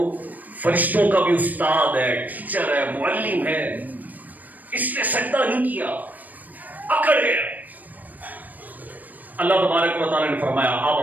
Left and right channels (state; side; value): late; left; 0.082 ms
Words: فرشتوں کا بھی استاد ہے، ٹیچر ہے، معلم ہے، اس نے سجدہ نہیں کیا، اکڑ گیا۔ اللہ تبارک و تعالیٰ نے فرمایا اب